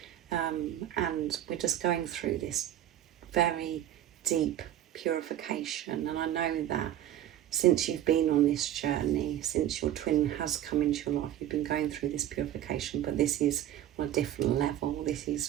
and we're just going through this very deep purification. And I know that since you've been on this journey, since your twin has come into your life, you've been going through this purification, but this is on a different level. This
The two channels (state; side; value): quieter; left; 12.0 dB